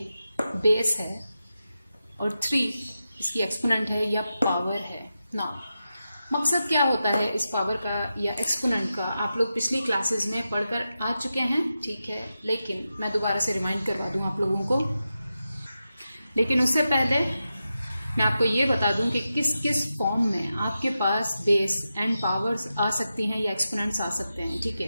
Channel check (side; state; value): both; inverted; correlation -0.90